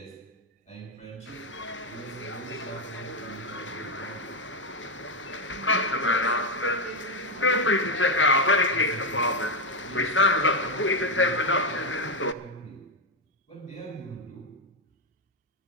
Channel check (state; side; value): normal; both; correlation 0.06